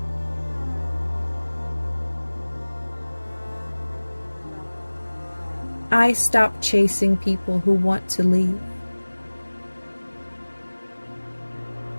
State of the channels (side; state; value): both; inverted; correlation -1.00